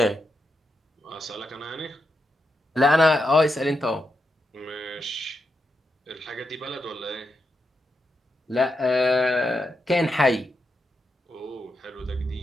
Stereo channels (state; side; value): normal; both; correlation 0.85